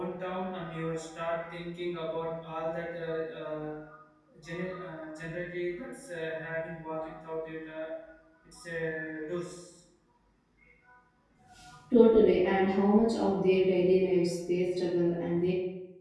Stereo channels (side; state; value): both; identical; correlation 1.00